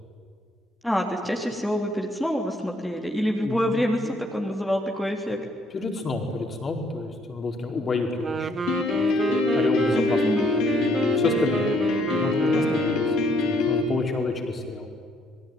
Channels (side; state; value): both; normal; correlation 0.67